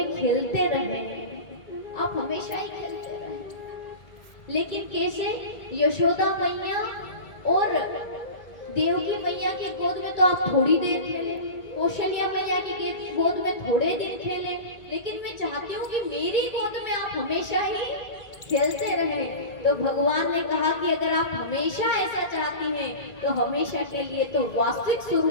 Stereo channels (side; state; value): right; late; 2.2 ms